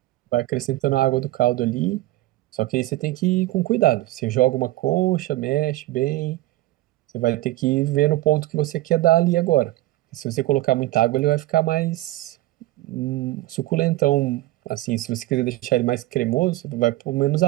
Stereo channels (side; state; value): left; quieter; 17.3 dB